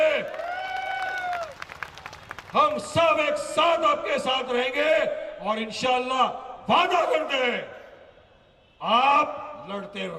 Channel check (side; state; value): both; identical; correlation 1.00